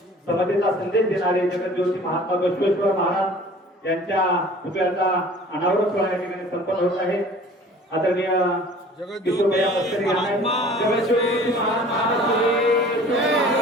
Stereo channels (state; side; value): normal; both; correlation 0.47